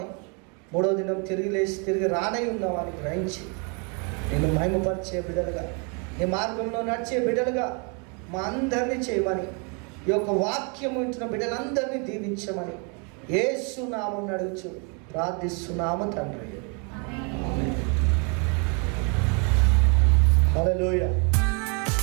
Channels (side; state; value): left; quieter; 35.4 dB